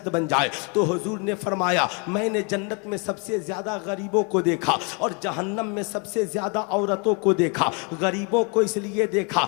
बन जाए। तो हुजूर ने फरमाया, मैंने जन्नत में सबसे ज्यादा गरीबों को देखा और जहन्नम में सबसे ज्यादा औरतों को देखा। गरीबों को इसलिए देखा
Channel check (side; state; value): right; quieter; 34.7 dB